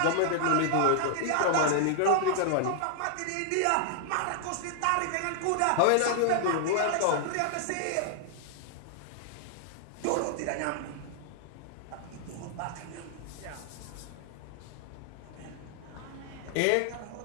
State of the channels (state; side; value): different; both; correlation 0.00